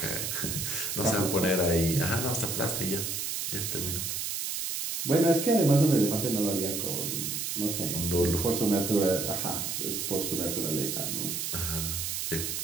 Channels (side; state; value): right; noise; hiss, 2 dB below the sound